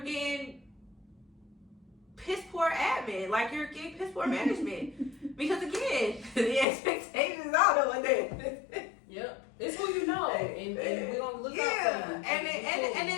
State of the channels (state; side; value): drops out; right; at 6.7 s